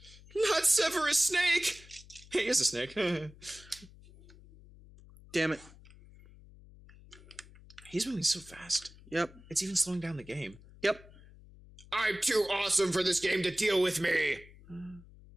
Not Severus Snake! He is a snake. Damn it. He's moving so fast. Yep. It's even slowing down the game. Yep. I'm too awesome for this game to deal with me!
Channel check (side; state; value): left; noise; hum, 22 dB below the sound